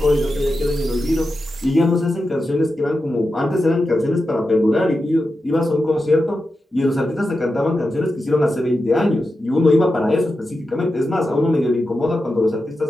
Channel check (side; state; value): both; normal; correlation 0.90